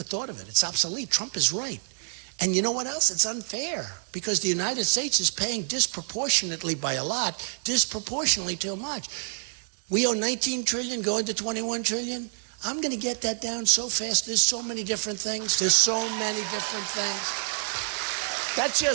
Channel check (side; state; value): left; silent; digital silence